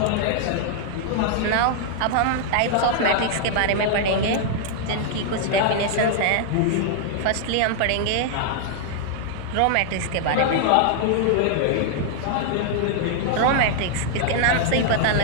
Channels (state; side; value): different; both; correlation -0.01